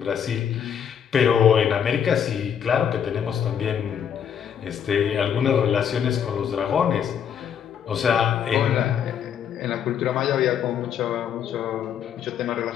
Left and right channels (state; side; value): quieter; right; 8.4 dB